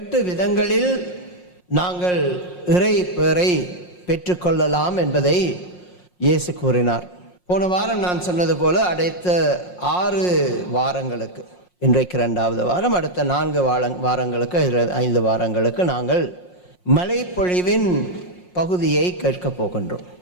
விதங்களில் நாங்கள் இறை பேரை பெற்றுக்கொள்ளலாம் என்பதை இயேசு கூறினார். போன வாரம் நான் சொன்னது போல அடுத்த 6 வாரங்களுக்கு, இன்றைக்கு 2வது வாரம், அடுத்த 4 வாரங்களுக்கு 5 வாரங்களுக்கு நாங்கள் மலைப்பொழிவின் பகுதியை கேட்கப் போகின்றோம்.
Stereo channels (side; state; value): right; late; 5.6 ms